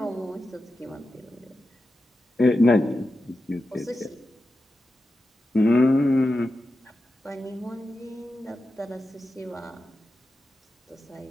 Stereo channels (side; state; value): both; normal; correlation 0.91